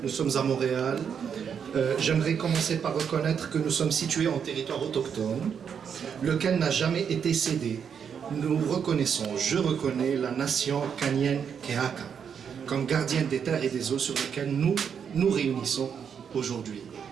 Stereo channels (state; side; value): quieter; left; 7.3 dB